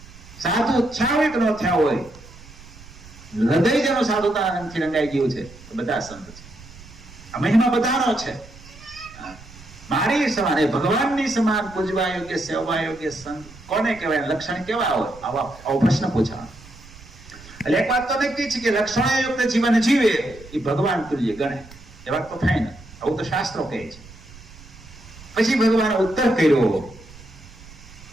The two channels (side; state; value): right; noise; rumble, 20 dB below the sound